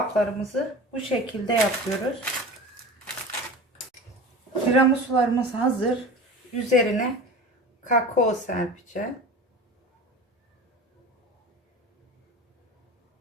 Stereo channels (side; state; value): both; normal; correlation 0.35